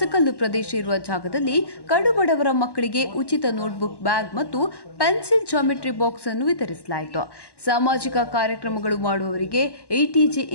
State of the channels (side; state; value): right; late; 1.1 ms